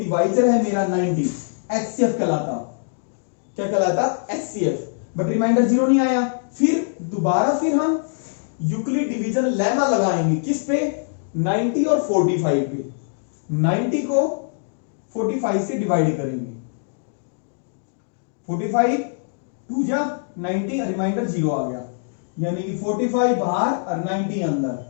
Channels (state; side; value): silent; right; digital silence